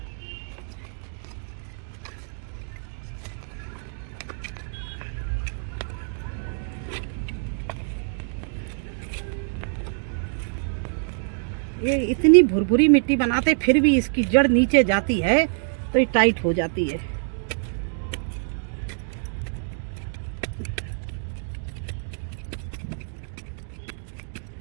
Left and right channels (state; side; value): silent; left; digital silence